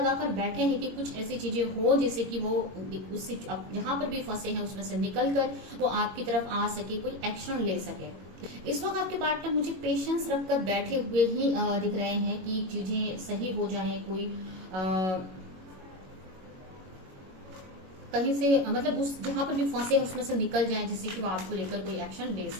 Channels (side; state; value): left; late; 21 ms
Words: बैठे हैं कि कुछ ऐसी चीजें हो जिससे कि वो उससे जहां पर भी फंसे हैं उसमें से निकलकर वो आपकी तरफ आ सके, कोई एक्शन ले सके। इस वक्त आपके पार्टनर मुझे पेशेंस रखकर बैठे हुए ही दिख रहे हैं कि चीजें सही हो जाए, कोई कहीं से मतलब उस जहां पर भी फंसे हैं उसमें से निकल जाए, जिससे कि वो आपको लेकर कोई एक्शन ले